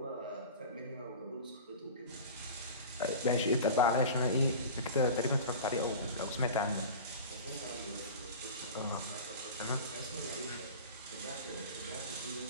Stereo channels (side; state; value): both; inverted; correlation -0.34